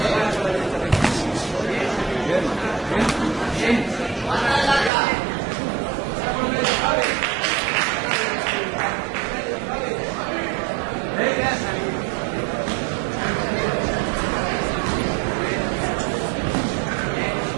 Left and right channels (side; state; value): left; drops out; at 4.9 s